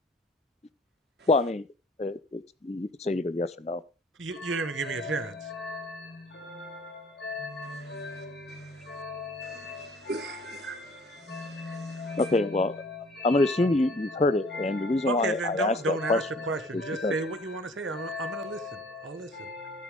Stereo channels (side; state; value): both; normal; correlation 0.53